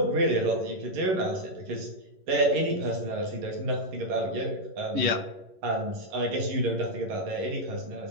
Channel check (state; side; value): late; left; 11 ms